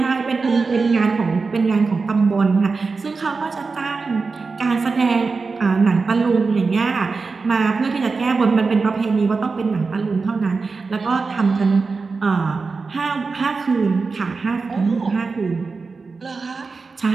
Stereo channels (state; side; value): quieter; left; 4.4 dB